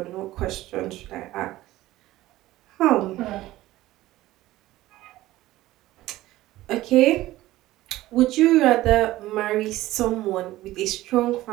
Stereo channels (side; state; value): left; quieter; 16.4 dB